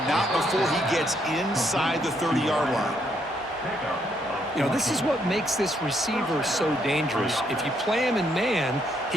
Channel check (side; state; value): both; normal; correlation 0.73